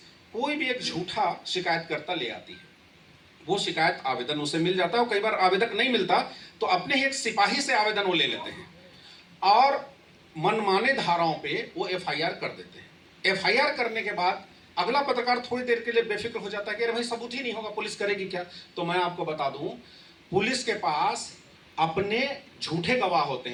कोई भी एक झूठा शिकायतकर्ता ले आती है, वो शिकायत आवेदन उसे मिल जाता है, और कई बार आवेदक नहीं मिलता तो अपने ही एक सिपाही से आवेदन वो ले लेते हैं और मनमाने धाराओं पे वो एफआईआर कर देते हैं। एफआईआर करने के बाद अगला पत्रकार थोड़ी देर के लिए बेफिक्र हो जाता है कि अरे भाई सबूत ही नहीं होगा, पुलिस करेगी क्या। तो मैं आपको बता दूं, पुलिस के पास अपने झूठे गवाह होते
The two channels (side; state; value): both; identical; correlation 1.00